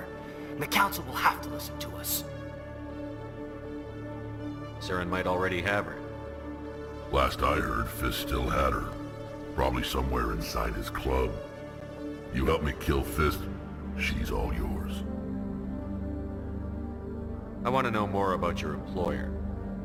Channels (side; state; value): both; identical; correlation 1.00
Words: And the Council will have to listen to us. Saren might already have her. Last I heard, Fist still had her. Probably somewhere inside his club. You help me kill Fist, she's all yours. I want to know more about your employer.